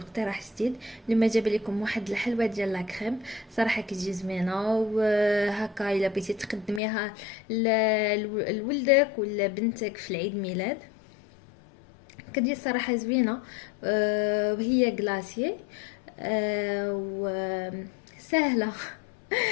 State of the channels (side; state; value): right; drops out; at 6.8 s